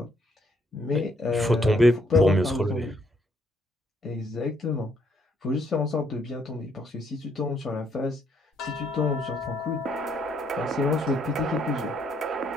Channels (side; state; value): both; normal; correlation 0.70